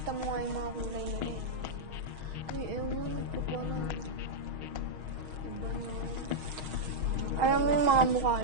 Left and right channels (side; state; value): left; late; 6.3 ms